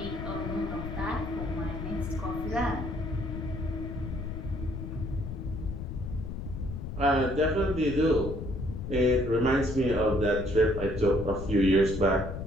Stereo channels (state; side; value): noise; left; rumble, 6 dB below the sound